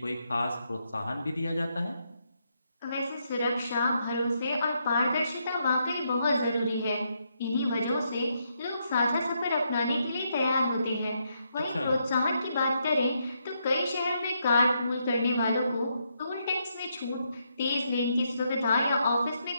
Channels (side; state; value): both; inverted; correlation -0.78